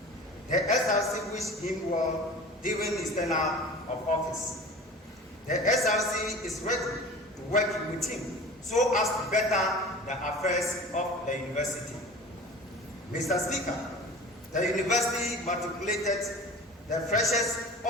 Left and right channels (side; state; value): both; normal; correlation 0.38